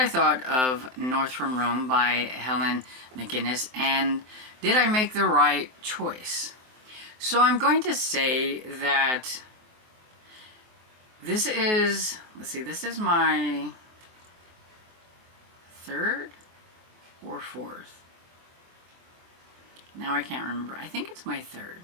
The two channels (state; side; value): late; left; 23 ms